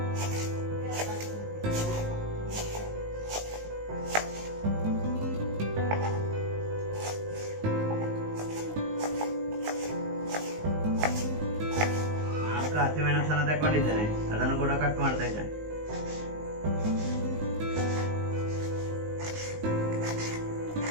ಹಸಿಮೆಣಸನ್ನು ತಗೊಂಡಿದ್ದೇನೆ, ಅದನ್ನು ಕೂಡ ಕಟ್ ಮಾಡ್ತಾ ಇದ್ದೇನೆ.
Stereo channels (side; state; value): left; late; 19 ms